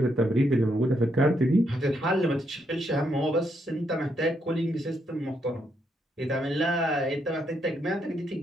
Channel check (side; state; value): both; normal; correlation 0.77